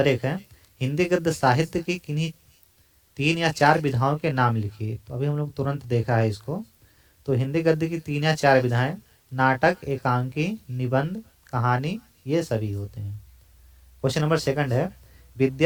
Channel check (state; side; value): identical; both; correlation 1.00